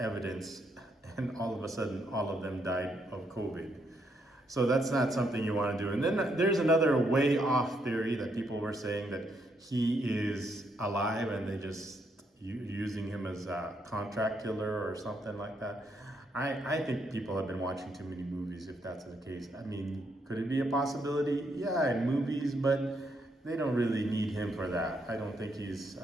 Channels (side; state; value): both; normal; correlation 0.76